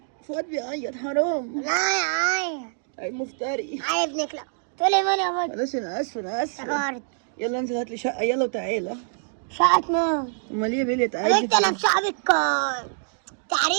فؤاد بيعيط حرام. لا يا عاية. اي مفتري. عاية ابن كلاب. تقولي مين يا بنت؟ خلاص انا اسف انا اسف. افتكرت. يلا انزل هات لي شقه يلا وتعالى. شقة مين؟ امال ايه يا بلية يا تعالي؟ بنت انا بشعبك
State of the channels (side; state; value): left; silent; digital silence